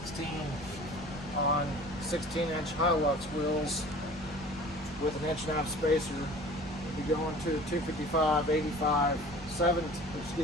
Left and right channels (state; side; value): noise; right; rumble, 19 dB below the sound